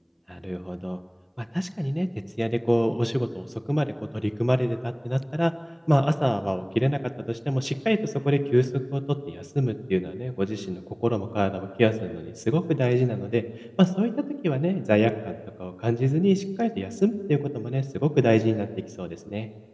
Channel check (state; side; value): identical; both; correlation 1.00